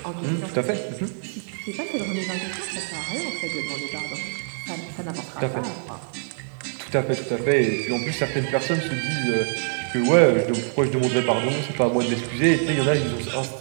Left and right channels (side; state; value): left; silent; digital silence